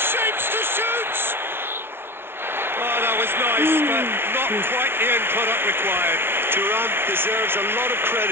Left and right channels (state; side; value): late; left; 0.11 ms